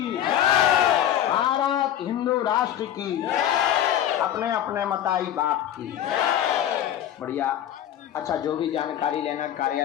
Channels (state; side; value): quieter; right; 11.0 dB